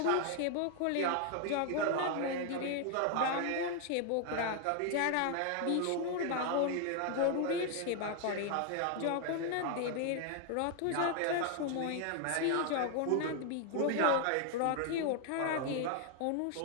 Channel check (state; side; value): different; both; correlation 0.00